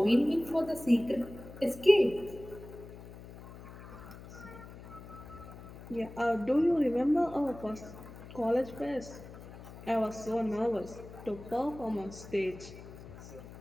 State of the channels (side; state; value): left; noise; hum, 15 dB below the sound